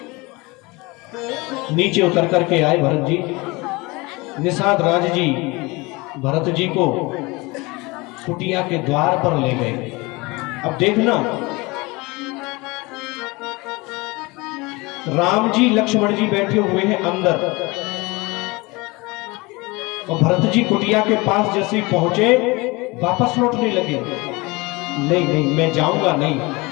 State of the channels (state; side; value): quieter; right; 24.4 dB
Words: नीचे उतर करके आए भरत जी। निषाद राज जी भरत जी को कुटिया के द्वार पर ले गए। अब देखना, राम जी लक्ष्मण जी बैठे हुए हैं अंदर, और भरत जी कुटिया के पास जैसे ही पहुंचे वापस लौटने लगे। नहीं नहीं, मैं जाऊंगा नहीं,